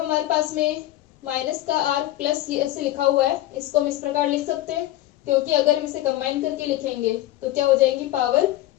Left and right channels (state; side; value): quieter; right; 15.4 dB